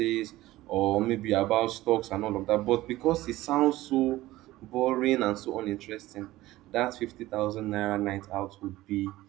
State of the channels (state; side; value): quieter; left; 17.0 dB